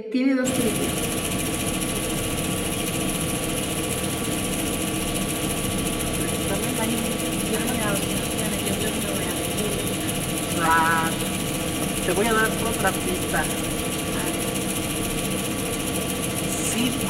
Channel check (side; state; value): both; identical; correlation 1.00